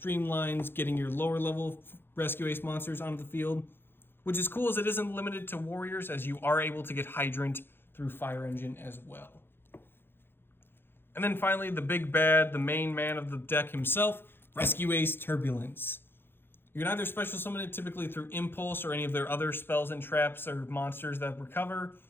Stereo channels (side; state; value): right; late; 0.10 ms